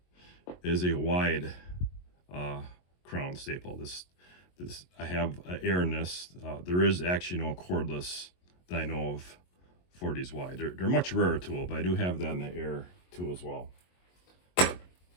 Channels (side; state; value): right; late; 22 ms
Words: is a wide crown staple. This I have air in this. There is actually no cordless that I know of for these wide. They're much rarer tool, but I do have that in the air tool as well.